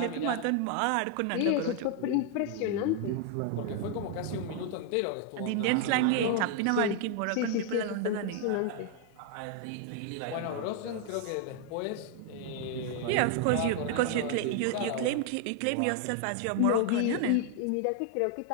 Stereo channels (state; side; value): different; both; correlation 0.00